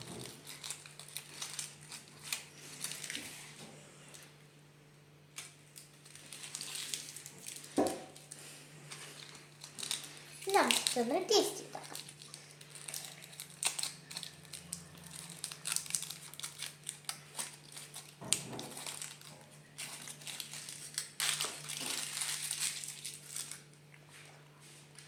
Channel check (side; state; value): both; identical; correlation 1.00